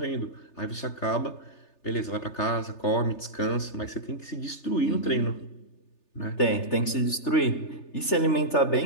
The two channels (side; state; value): right; late; 3.3 ms